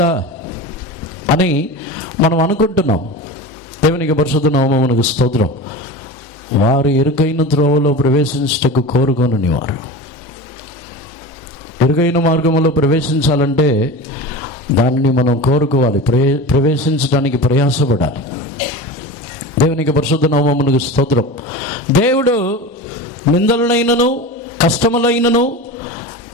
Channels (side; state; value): both; normal; correlation 0.30